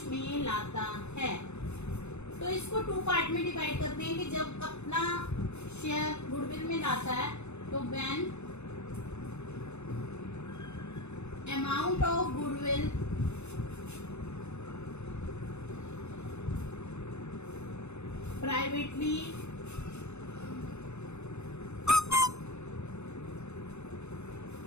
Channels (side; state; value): right; late; 0.81 ms